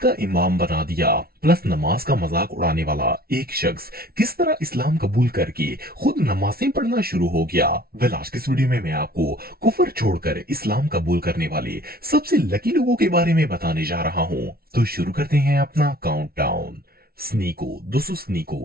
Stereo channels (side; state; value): left; late; 0.44 ms